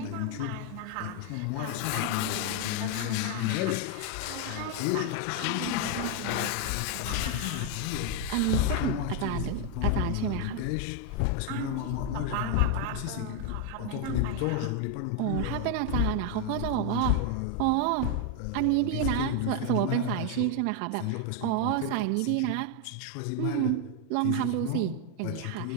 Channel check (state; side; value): different; both; correlation 0.01